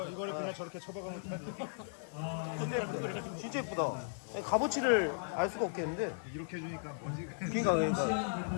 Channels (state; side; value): silent; right; 53 dB below the other